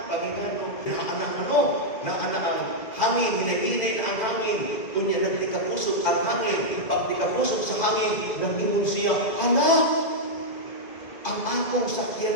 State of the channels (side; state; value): right; late; 2.4 ms